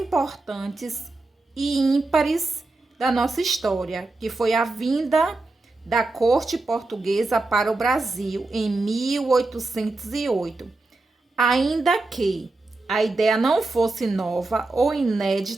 e ímpares da nossa história, que foi a vinda da corte portuguesa para o Brasil em 1808. Ainda que a ideia não fosse nova ou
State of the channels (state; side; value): quieter; left; 3.2 dB